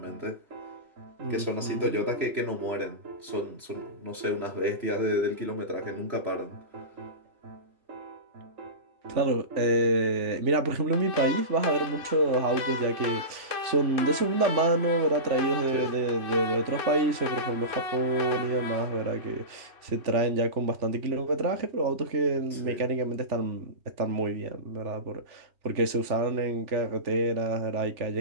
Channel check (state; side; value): late; left; 3.4 ms